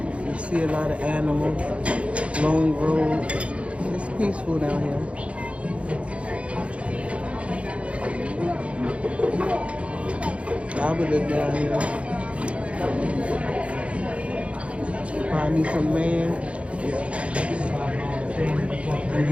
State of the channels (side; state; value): left; late; 0.062 ms